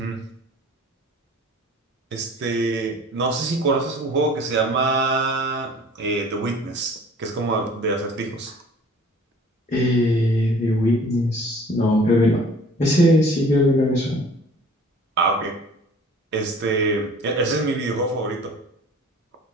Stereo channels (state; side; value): normal; both; correlation 0.48